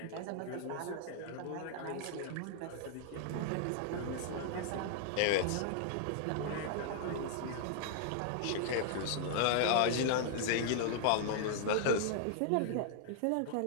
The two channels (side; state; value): both; different; correlation -0.01